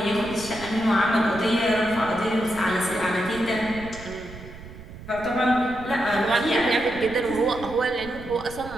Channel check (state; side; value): noise; right; rumble, 15 dB below the sound